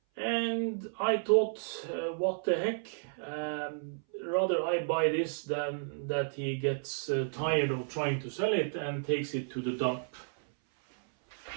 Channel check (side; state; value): left; silent; 56 dB below the other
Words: And I thought, what the heck, rather I buy this than that he gets tired of trying to sell it and takes it to the dump.